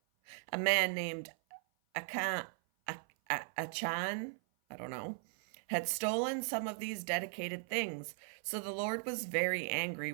A man named Achan, had stolen some of these dedicated things, so the Lord was very angry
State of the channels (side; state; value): left; silent; 53 dB below the other